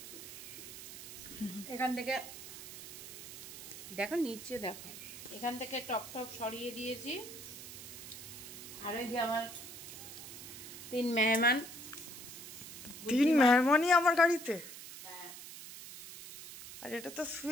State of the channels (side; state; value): right; noise; hiss, 12 dB below the sound